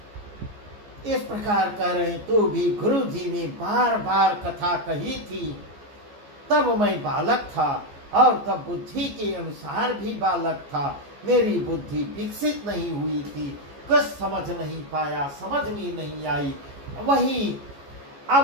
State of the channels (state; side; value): late; left; 14 ms